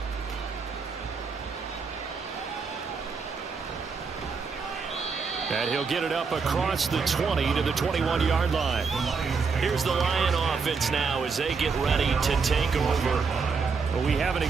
And he'll get it up across the 20 to the 21-yard line. Here's the Lion offense now as they get ready to take over. Well, we haven't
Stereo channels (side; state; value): left; quieter; 5.1 dB